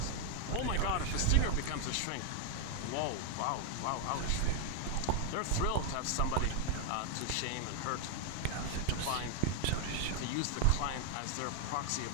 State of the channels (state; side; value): different; both; correlation 0.00